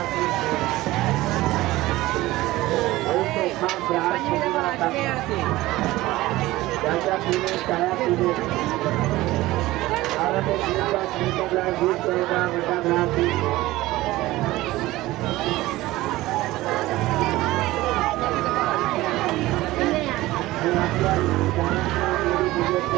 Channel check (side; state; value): left; quieter; 17.8 dB